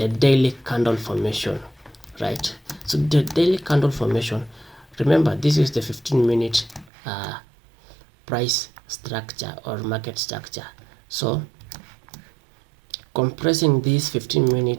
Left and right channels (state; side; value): drops out; left; at 6.9 s